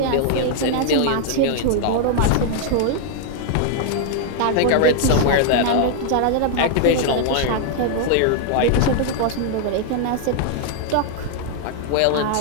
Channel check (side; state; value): both; different; correlation 0.00